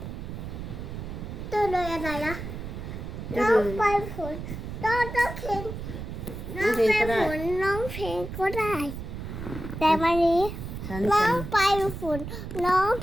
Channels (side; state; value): right; noise; rumble, 8 dB below the sound